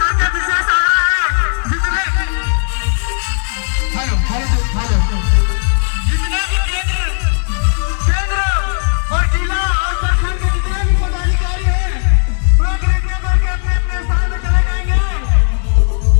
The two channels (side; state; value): right; silent; digital silence